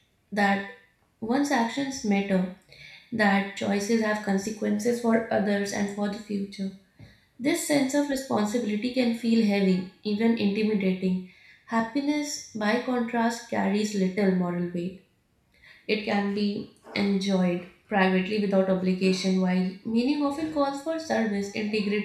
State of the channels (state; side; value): identical; both; correlation 1.00